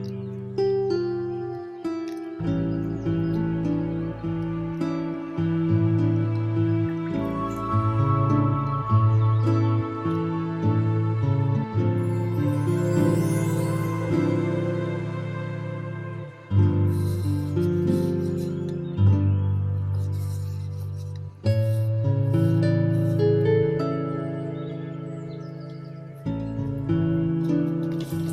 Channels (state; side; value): identical; both; correlation 1.00